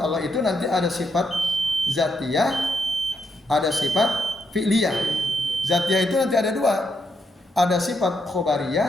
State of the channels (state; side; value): normal; both; correlation 0.79